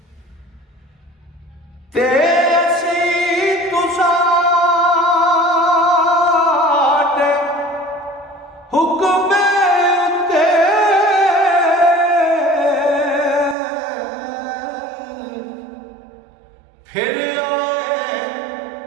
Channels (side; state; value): left; drops out; at 13.6 s